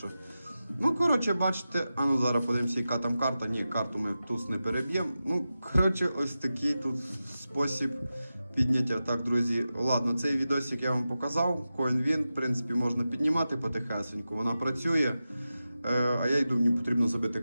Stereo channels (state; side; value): inverted; both; correlation -0.92